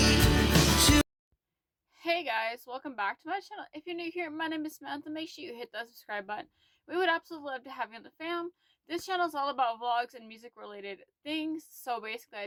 Hey guys, welcome back to my channel. If you're new here, my name is Samantha. Make sure you hit that subscribe button. We would absolutely love to have you on the fam. This channel is all about vlogs and music related things. So basically I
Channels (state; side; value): identical; both; correlation 1.00